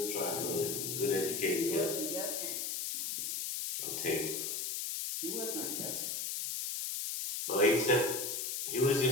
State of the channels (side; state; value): left; noise; hiss, 2 dB below the sound